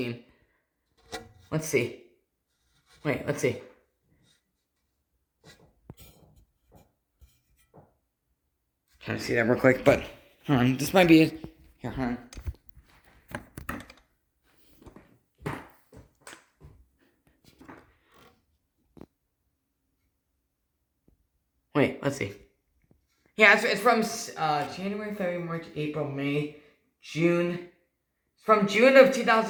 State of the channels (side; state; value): both; identical; correlation 1.00